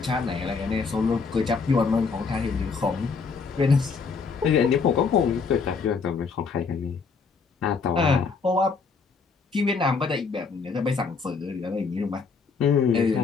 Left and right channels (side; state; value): right; quieter; 5.0 dB